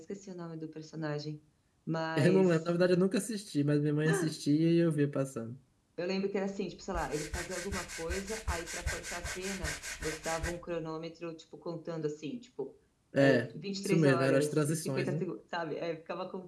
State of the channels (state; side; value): identical; both; correlation 1.00